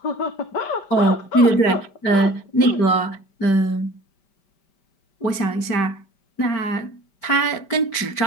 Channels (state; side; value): late; right; 5.1 ms